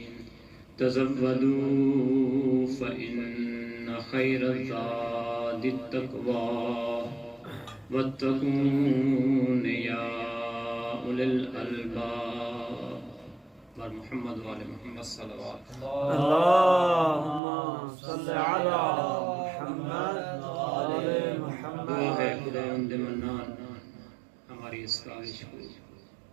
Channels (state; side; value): drops out; left; at 17.4 s